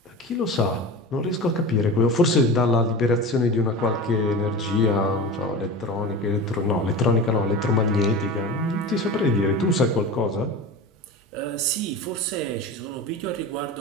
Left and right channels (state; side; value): normal; both; correlation 0.30